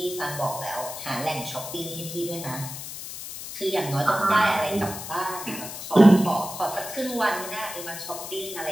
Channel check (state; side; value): noise; left; hiss, 9 dB below the sound